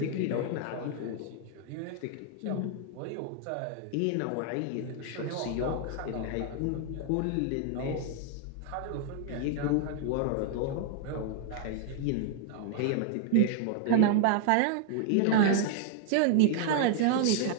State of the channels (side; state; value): both; different; correlation 0.00